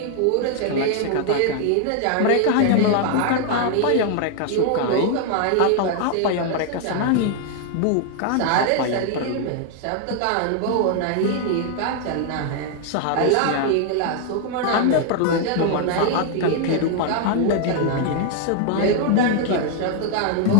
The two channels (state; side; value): different; both; correlation 0.00